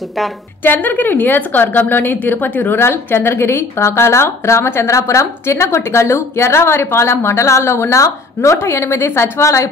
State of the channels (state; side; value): quieter; right; 3.5 dB